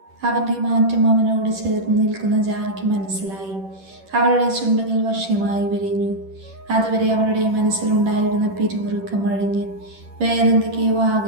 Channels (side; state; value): left; late; 10 ms